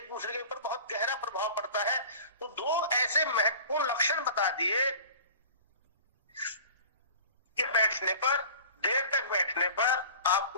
दूसरे के ऊपर बहुत गहरा प्रभाव पड़ता है। तो 2 ऐसे महत्वपूर्ण लक्षण बता दिए कि बैठने पर, देर तक बैठने पर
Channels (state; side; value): inverted; both; correlation -0.42